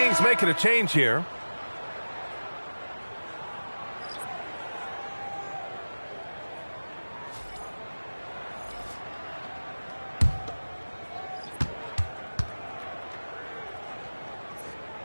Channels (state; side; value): inverted; both; correlation -1.00